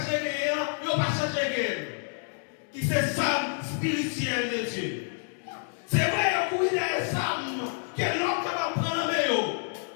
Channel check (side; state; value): right; silent; 59 dB below the other